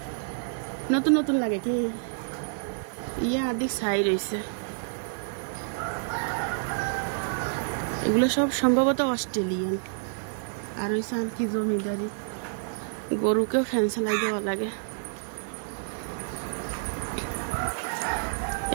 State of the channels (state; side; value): silent; left; digital silence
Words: নতুন নতুন লাগে কি? ইয়া আদিক ছাই রয়েছে। এগুলো সব সম্ভবত অস্ট্রেলিয়ান। আর হয়েছে আর কি জমিদারি, গরুকেও ফ্যান চালাই দেওয়া লাগে।